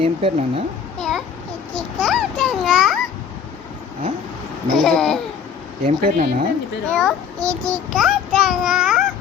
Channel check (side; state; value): right; quieter; 7.1 dB